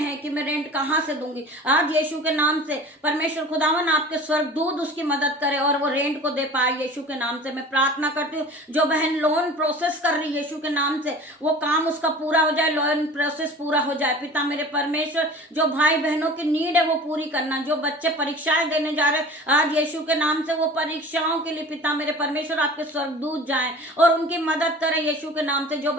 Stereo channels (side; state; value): both; normal; correlation 0.40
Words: कि मैं रेंट कहाँ से दूंगी, आज यीशु के नाम से परमेश्वर खुदावन आपके स्वर्गदूत उसकी मदद करे और वो रेंट को दे पाए यीशु के नाम से। मैं प्रार्थना करती हूँ, जो बहन लोन प्रोसेस कर रही है यीशु के नाम से, वो काम उसका पूरा हो जाए, लोन प्रोसेस पूरा हो जाए। पिता मेरे परमेश्वर, जो भाई बहनों की नीड है वो पूरी करना, जो बच्चे परीक्षाएं देने जा रहे हैं आज यीशु के नाम से, वो परीक्षाओं के लिए पिता मेरे परमेश्वर आपके स्वर्गदूत जाएं और उनकी मदद करें यीशु के नाम से। जो